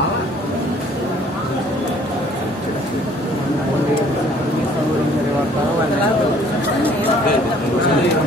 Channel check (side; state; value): both; normal; correlation 0.57